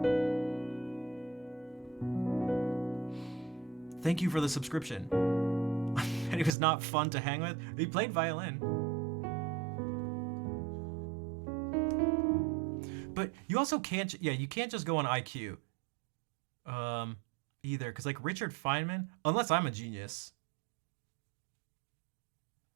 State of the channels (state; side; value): drops out; left; at 6.5 s